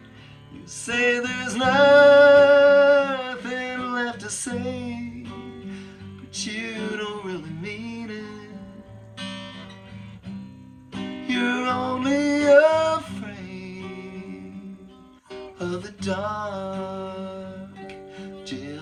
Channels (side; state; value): both; identical; correlation 1.00